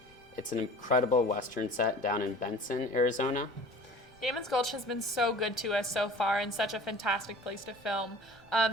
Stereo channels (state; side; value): noise; left; rumble, 29 dB below the sound